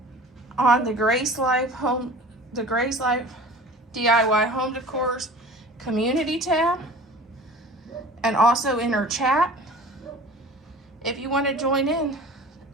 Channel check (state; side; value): normal; both; correlation 0.42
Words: on the Grace Life DIY Home Decor's community tab, and also in her chat if you want to join in